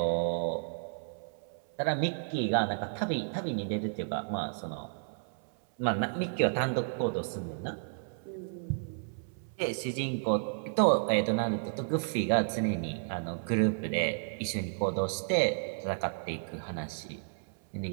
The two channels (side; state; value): left; silent; 56 dB below the other